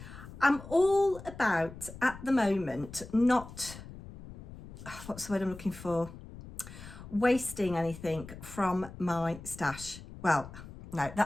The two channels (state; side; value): noise; left; rumble, 15 dB below the sound